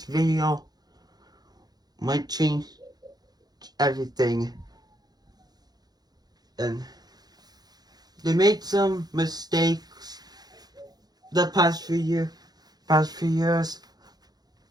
video might change everything. And they made some mistakes the past few years.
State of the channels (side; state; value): left; late; 0.19 ms